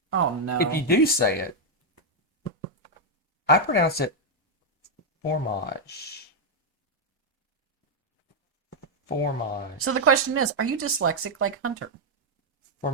oh no. if you do say it, I pronounce it fromage. Fromage. So the question is, are you dyslexic like Hunter?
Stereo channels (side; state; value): both; normal; correlation -0.02